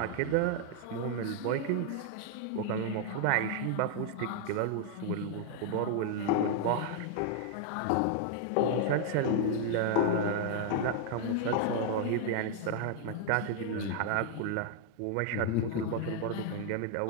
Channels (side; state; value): both; different; correlation 0.00